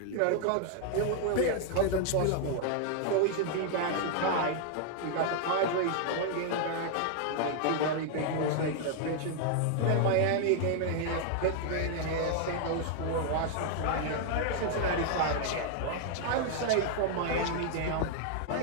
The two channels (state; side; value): different; both; correlation 0.00